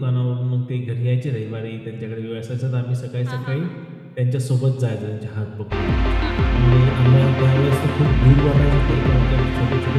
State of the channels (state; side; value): identical; both; correlation 1.00